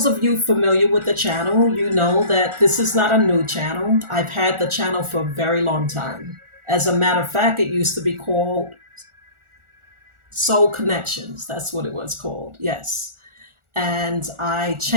of you familiar with the channel, you know that this is not a new channel. I've had the channel for a very long time. As a matter of fact, it used to be called Soul Connections. That's what it was called. Yes. And I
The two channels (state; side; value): late; left; 1.4 ms